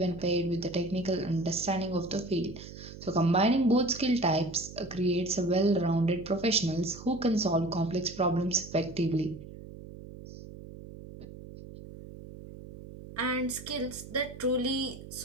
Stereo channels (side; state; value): right; noise; hum, 14 dB below the sound